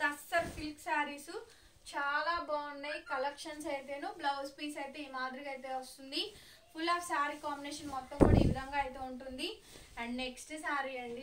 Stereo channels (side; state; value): both; identical; correlation 1.00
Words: టస్సర్ సిల్క్ శారీస్ చాలా బాగున్నాయి కలెక్షన్స్ అయితేను. బ్లౌజ్ పీస్ అయితే ఈ మాదిరిగా అయితే వస్తుంది. ఫుల్ ఆఫ్ శారీ కాంబినేషన్ మొత్తం కూడా ఈ విధంగా అయితే ఉంటుంది. అండ్ నెక్స్ట్ శారీ